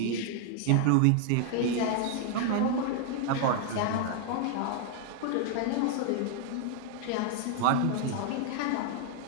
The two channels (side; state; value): both; different; correlation 0.00